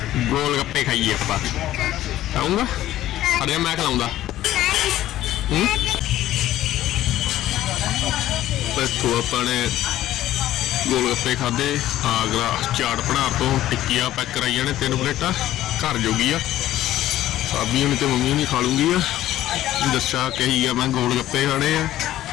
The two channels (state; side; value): quieter; right; 13.8 dB